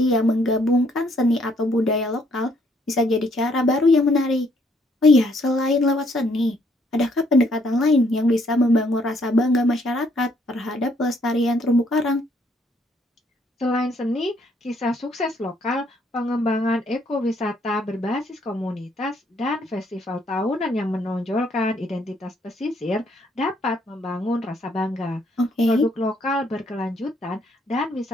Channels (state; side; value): normal; both; correlation 0.68